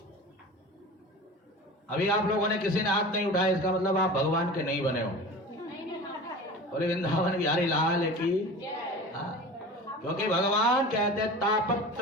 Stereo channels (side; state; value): both; normal; correlation 0.35